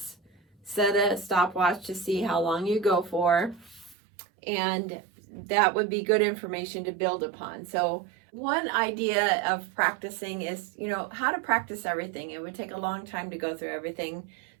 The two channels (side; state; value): left; drops out; at 4.0 s